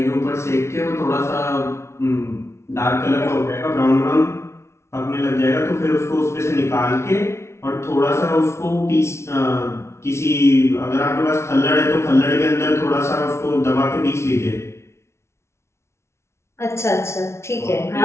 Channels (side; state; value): right; late; 0.13 ms